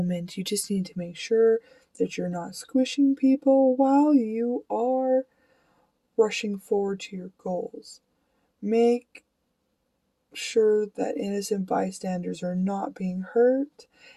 You just need to make sure that you're not squishing people while you are rushing forward to your goals. Make sure that innocent bystanders are not being hurt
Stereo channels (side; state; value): both; identical; correlation 1.00